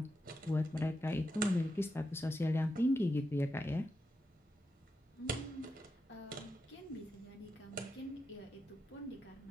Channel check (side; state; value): both; normal; correlation 0.87